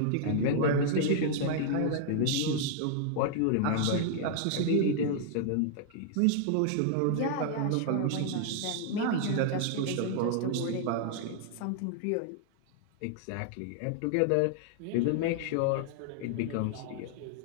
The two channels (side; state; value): both; different; correlation -0.01